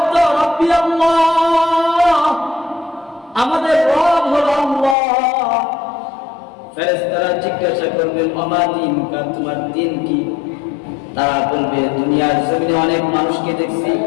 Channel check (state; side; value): drops out; right; at 5.0 s